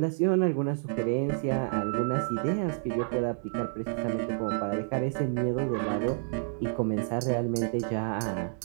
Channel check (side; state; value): left; silent; digital silence